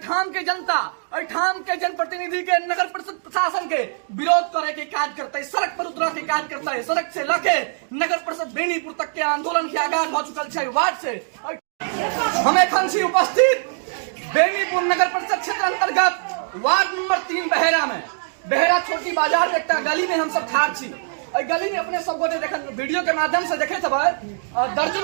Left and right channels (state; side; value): silent; left; digital silence